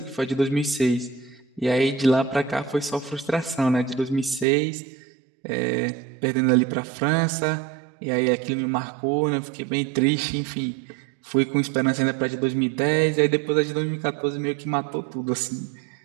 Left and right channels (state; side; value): drops out; left; at 4.5 s